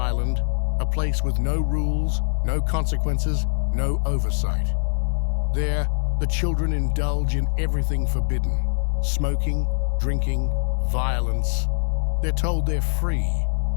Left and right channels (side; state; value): right; silent; digital silence